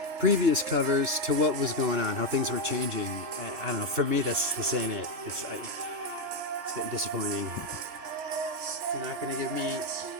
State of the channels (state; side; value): late; left; 2.9 ms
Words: previous covers to what was going on, how things were changing. I don't know. For me, this ain't it. It's getting disappointing. If you're not going to give me a